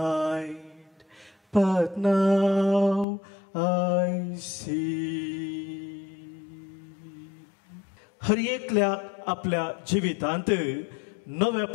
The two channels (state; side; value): drops out; right; at 3.1 s